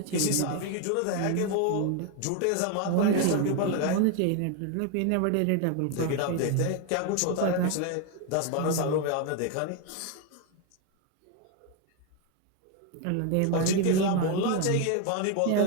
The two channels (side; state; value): both; different; correlation 0.01